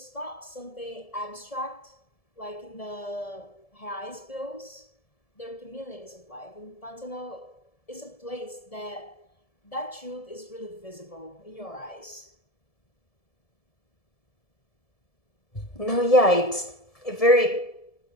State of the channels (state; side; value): late; right; 1.7 ms